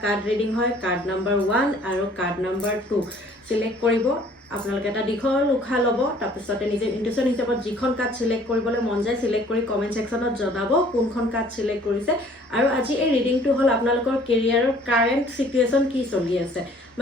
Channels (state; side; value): normal; both; correlation 0.55